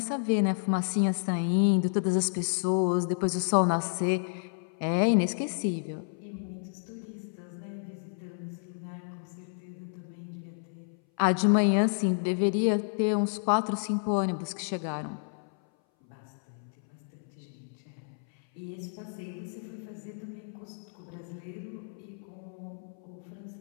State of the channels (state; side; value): silent; right; 57 dB below the other